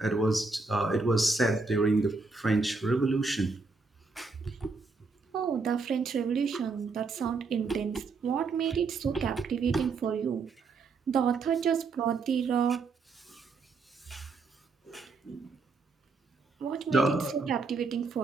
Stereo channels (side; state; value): left; quieter; 4.2 dB